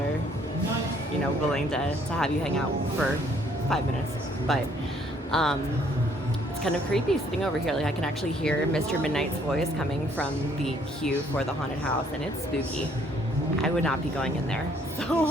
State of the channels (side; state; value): both; normal; correlation 0.64